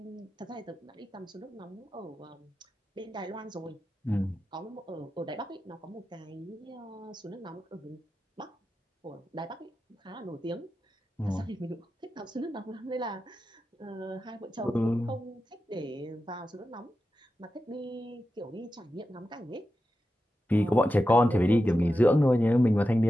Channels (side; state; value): both; normal; correlation 0.91